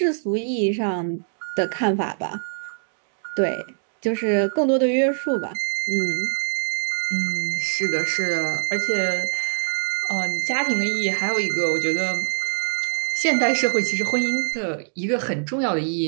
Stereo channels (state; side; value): silent; left; digital silence